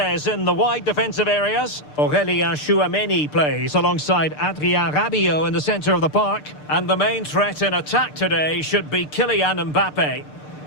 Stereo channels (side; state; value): right; late; 6.7 ms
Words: in the wide defensive areas. Aurélien Tchouameni plays alongside Adrien Rabiot in the centre of the park. And the main threat in attack today should be Kylian Mbappe.